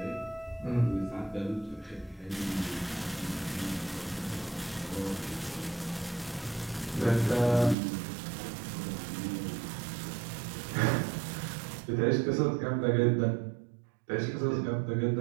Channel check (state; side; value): drops out; left; at 7.8 s